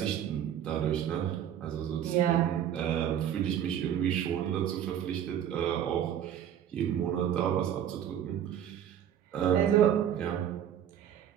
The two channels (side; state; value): left; quieter; 9.9 dB